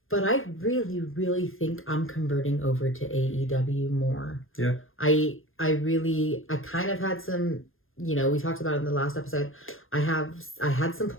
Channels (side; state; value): right; late; 0.60 ms